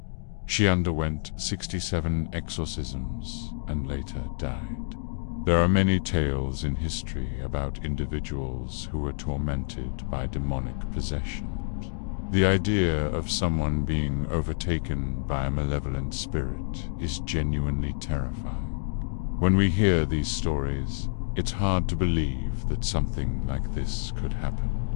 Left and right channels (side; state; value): right; silent; digital silence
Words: She underwent 67 exorcisms and later died. There are many tales in history about individuals who were tormented by demonic possession. The idea of someone being overtaken by a malevolent spirit is genuinely terrifying. When we hear these stories, it's hard to believe that something like this could happen.